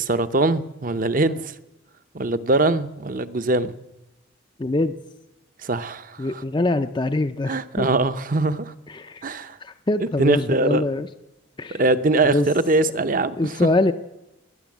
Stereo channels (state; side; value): normal; both; correlation 0.34